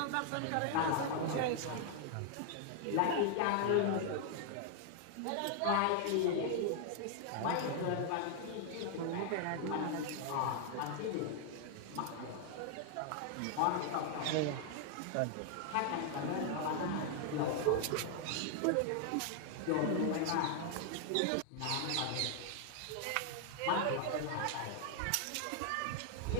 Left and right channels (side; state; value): both; different; correlation 0.00